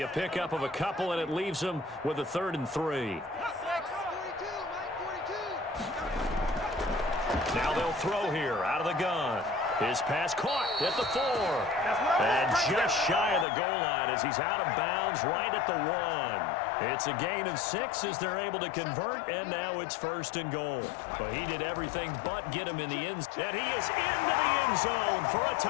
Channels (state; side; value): drops out; right; at 13.5 s